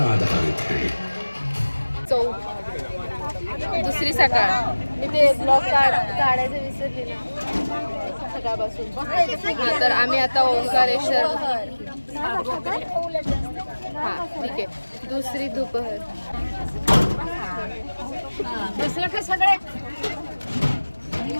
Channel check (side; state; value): both; inverted; correlation -1.00